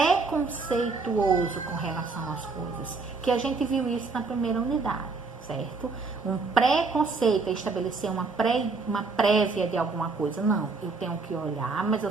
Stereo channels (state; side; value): quieter; left; 4.2 dB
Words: com relação às coisas, que a gente viu isso na primeira unidade, certo? Um preconceito é estabelecer uma prévia de alguma coisa. Não, eu tenho que olhar, mas eu